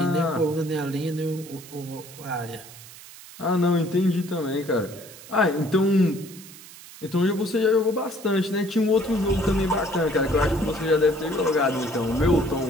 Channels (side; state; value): right; noise; hiss, 18 dB below the sound